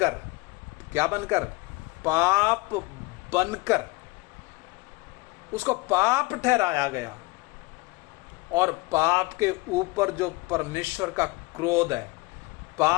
क्या बनकर? पाप बनकर उसको पाप ठहराया गया। और पाप के ऊपर जो परमेश्वर का क्रोध है,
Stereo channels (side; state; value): right; quieter; 23.1 dB